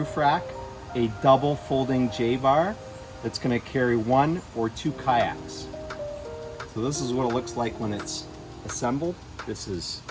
rack a double folding J-bar that's going to carry 1 or 2 kayaks. So this is what it looks like when it's assembled. This is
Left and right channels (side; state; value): both; identical; correlation 1.00